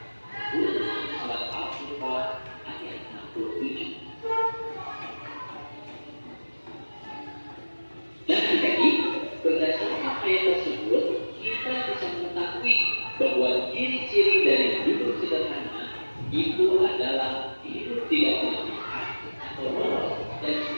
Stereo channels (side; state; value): both; inverted; correlation -1.00